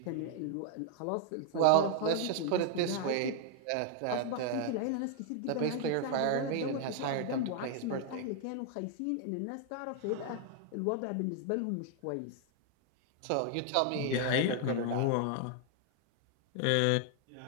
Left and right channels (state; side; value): different; both; correlation 0.00